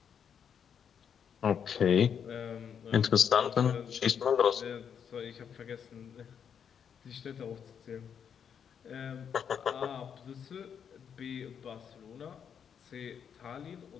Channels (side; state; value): right; quieter; 7.7 dB